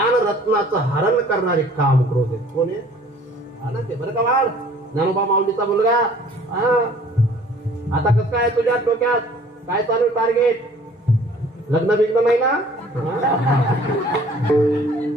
हरण करणारे काम क्रोध आहेत. कोण आहे? आनंद आहे. बरं का वाढ? ज्ञानोबा माऊलीचा मुलगा. आता कसं काय तुझ्या डोक्यात? काय चालू टार्गेट? लग्न बिग्न नाही ना?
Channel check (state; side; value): normal; both; correlation 0.53